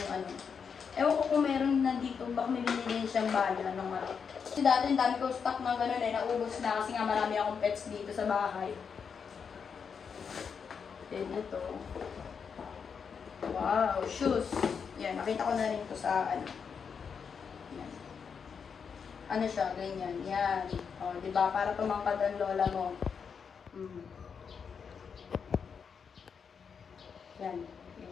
ano. Ewan ko kung meron na dito, baka may binili siyang bala ng malaki. Kasi dati, dami ko stock ng gano'n eh, naubos na kasi nga marami akong pets dito sa bahay. Then ito. Wow, shoes. Yan, nakita ko na rin ito sa ano. Yan. Ano siya, ganyan. Yan. O, di ba? Para tumangkad ang lola mo. Yan.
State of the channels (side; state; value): right; quieter; 6.3 dB